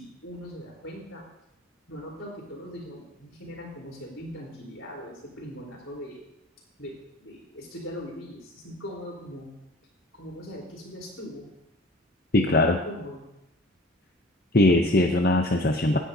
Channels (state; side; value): normal; both; correlation 0.46